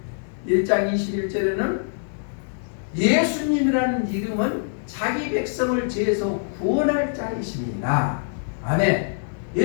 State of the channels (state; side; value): silent; right; digital silence